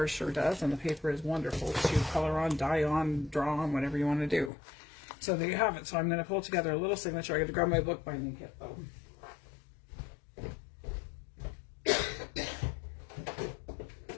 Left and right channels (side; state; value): right; drops out; at 4.5 s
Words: sure does, and the paper is wonderful to color on, dye on, draw on, whatever you want to do. So there you have it. So I'm going to pull together a little signature. I got to grab my book binding kit though.